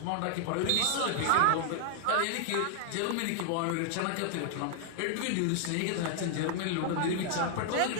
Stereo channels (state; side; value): different; both; correlation 0.00